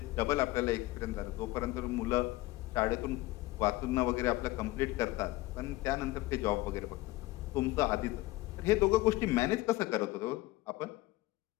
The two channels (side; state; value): right; quieter; 19.0 dB